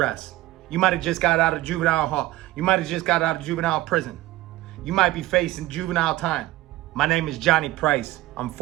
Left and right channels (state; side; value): quieter; left; 16.9 dB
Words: You might have just got out of juvenile hall. You might have just got out of juvenile prison. You might be facing juvenile time. My name is Johnny Price. I'm